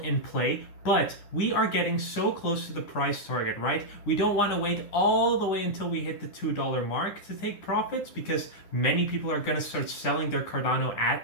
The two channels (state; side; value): late; right; 9.9 ms